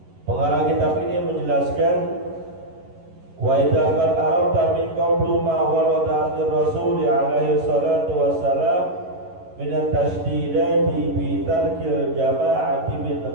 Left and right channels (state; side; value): late; left; 11 ms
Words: Pengarang kitab ini menjelaskan wa idza qad arafta min qawli ma warada an Rasul alaihi salatu wassalam min at-tashdidati bi tarkil jama'ati min